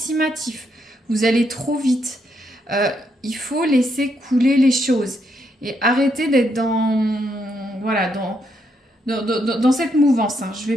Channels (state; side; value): normal; both; correlation 0.77